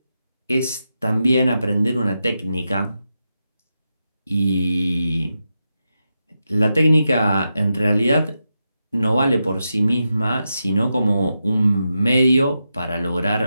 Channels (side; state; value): both; inverted; correlation -0.87